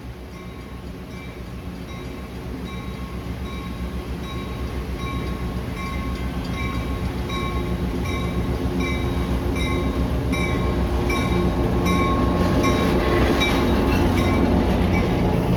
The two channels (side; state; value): both; identical; correlation 1.00